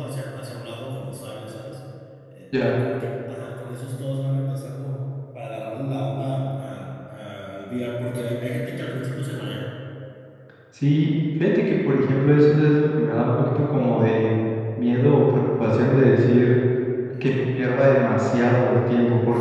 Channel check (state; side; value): identical; both; correlation 1.00